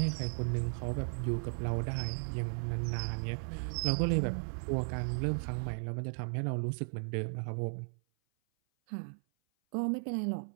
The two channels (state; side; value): silent; left; 54 dB below the other